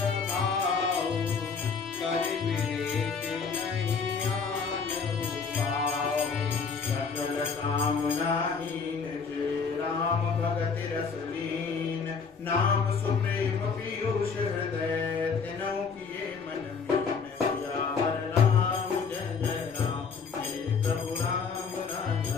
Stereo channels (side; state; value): right; quieter; 5.5 dB